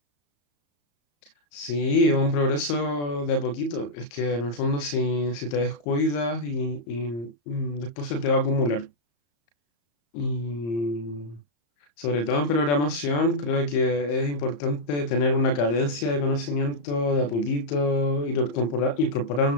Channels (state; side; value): late; right; 34 ms